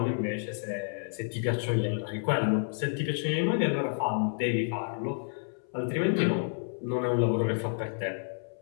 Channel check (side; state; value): right; silent; 58 dB below the other